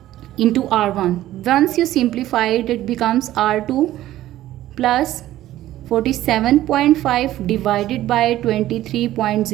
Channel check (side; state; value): left; quieter; 14.2 dB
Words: into R1. Once you simplify it, it becomes R2 plus 47.5 divided by